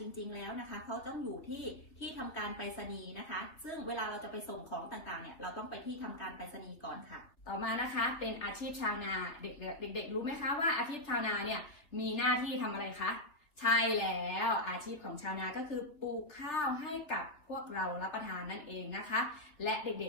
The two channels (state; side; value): late; right; 3.5 ms